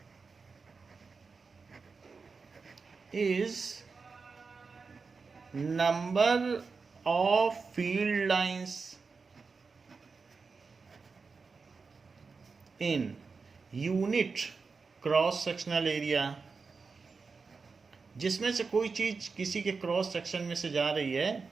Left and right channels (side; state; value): left; quieter; 4.7 dB